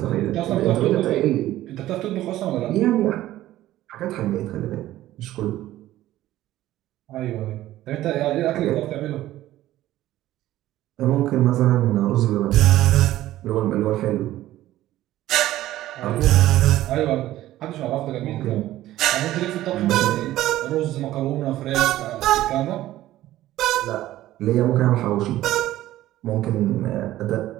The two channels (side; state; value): left; quieter; 14.7 dB